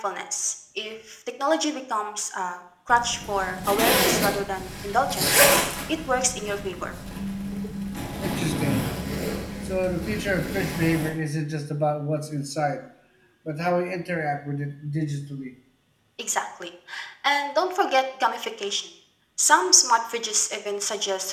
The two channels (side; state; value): both; identical; correlation 1.00